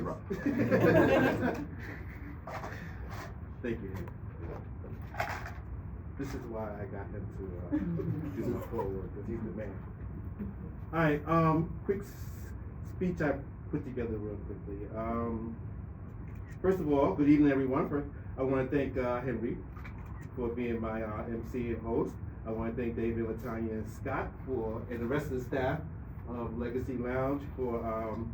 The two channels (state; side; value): identical; both; correlation 1.00